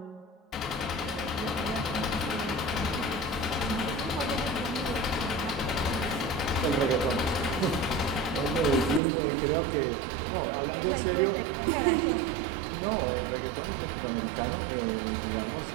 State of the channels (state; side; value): drops out; left; at 9.0 s